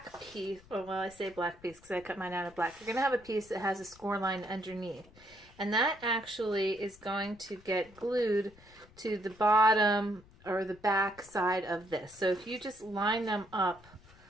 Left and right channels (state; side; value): noise; left; rumble, 24 dB below the sound